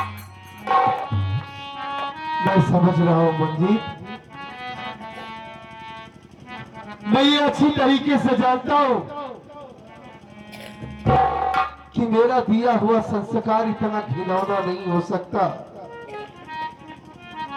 मैं समझ रहा हूं मंजीत, मैं ये अच्छी तरीके से जानता हूं कि मेरा दिया हुआ संस्कार इतना घिनौना नहीं हो सकता।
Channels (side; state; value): both; identical; correlation 1.00